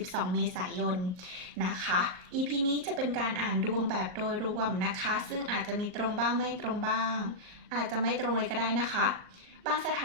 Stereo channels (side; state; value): left; late; 38 ms